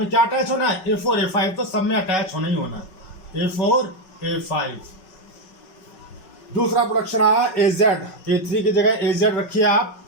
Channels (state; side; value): late; right; 5.4 ms